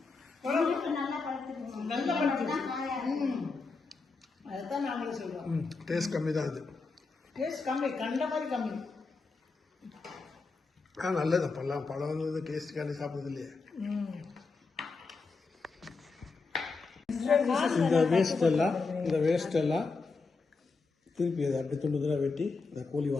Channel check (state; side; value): quieter; right; 4.2 dB